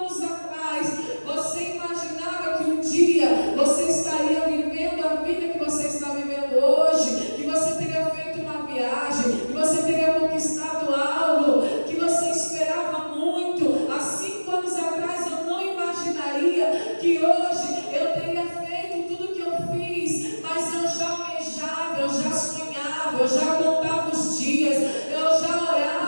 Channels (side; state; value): both; inverted; correlation -1.00